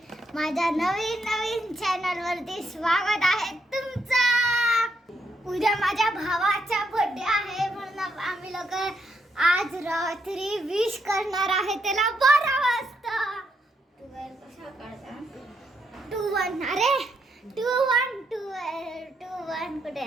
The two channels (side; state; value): both; normal; correlation 0.78